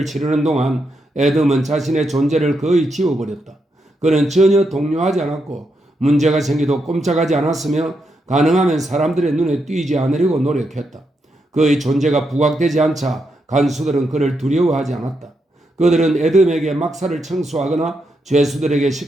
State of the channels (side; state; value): both; normal; correlation 0.82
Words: 치르는 동안 에돔은 자신의 존재를 거의 지워버렸다. 그는 전혀 동요하지 않았고 문제가 생기도 꼼짝하지 않았으며 가능하면 사람들의 눈에 띄지 않으려고 노력했다. 그의 존재가 부각되지 않자 간수들은 그를 두려워하지 않았다. 그들은 에돔에게 막사를 청소하거나 죄수들에게